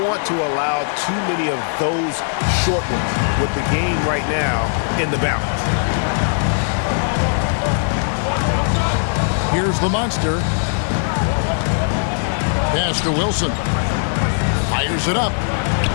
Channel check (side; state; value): right; silent; digital silence